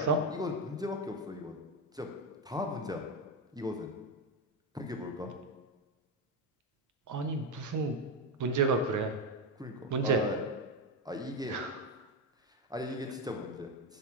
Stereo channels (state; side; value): normal; both; correlation 0.11